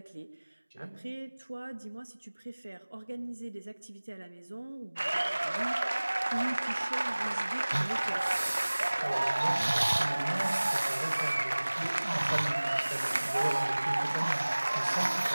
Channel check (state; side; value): inverted; both; correlation -1.00